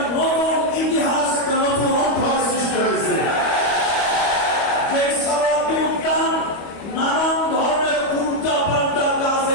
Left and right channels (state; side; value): late; right; 25 ms